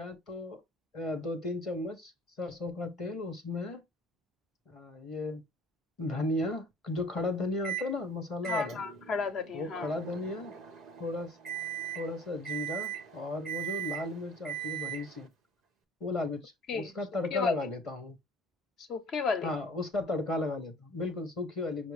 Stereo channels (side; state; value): both; normal; correlation 0.49